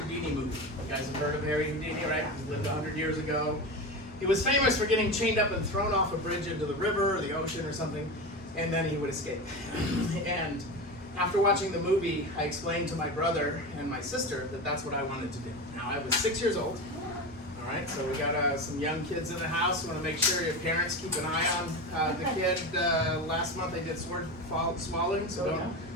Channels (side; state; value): both; normal; correlation 0.23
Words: movie. You guys have heard of Harry Houdini, right? He lived 100 years ago. He was famous for getting chained up and thrown off a bridge into the river or the ocean or something, and then he would escape. And after watching the movie, I explained to my brother and my sister that that's what I wanted to do. Now, I was 6 years old. All right, so we got some young kids in the house. Want to make sure your parents keep an eye on the kid. Last month they did sword swallowing, so